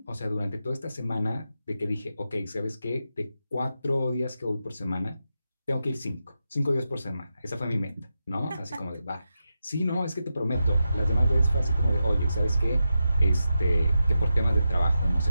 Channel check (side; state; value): both; inverted; correlation -0.88